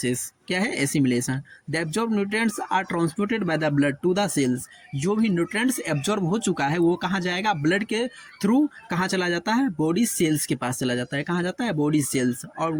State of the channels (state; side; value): identical; both; correlation 1.00